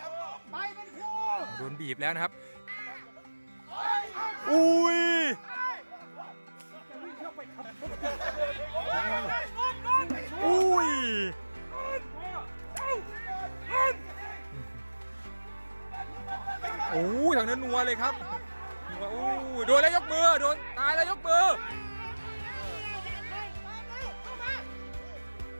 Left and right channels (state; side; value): inverted; both; correlation -1.00